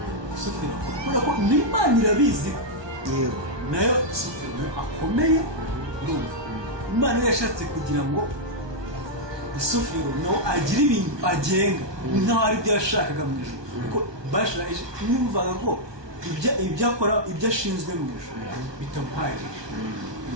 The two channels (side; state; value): left; late; 1.2 ms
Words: Sofera kubera ko n'Imana irabizi yego nayo Sofera akomeye urumva Imana yashatse kugira ngo Sofera nawe agire ibintu agenga nkaho ari byo yashakaga mu ijuru kuko bashaje nimvaga ko ibyo akora ibyo ashinzwe mu ijuru bitamuhagije